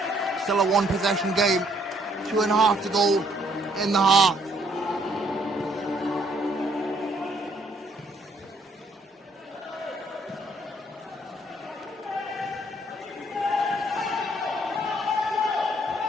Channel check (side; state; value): both; normal; correlation 0.67